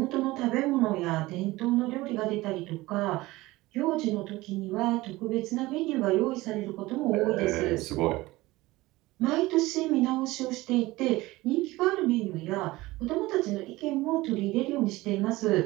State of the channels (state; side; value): quieter; left; 19.4 dB